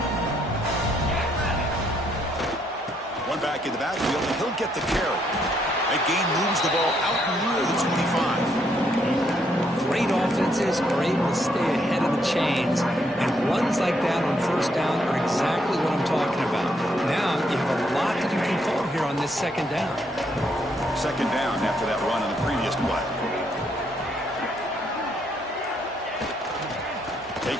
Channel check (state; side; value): normal; both; correlation 0.73